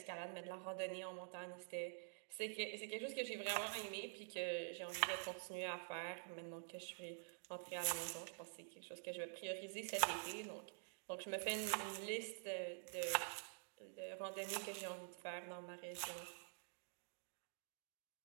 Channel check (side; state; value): left; silent; digital silence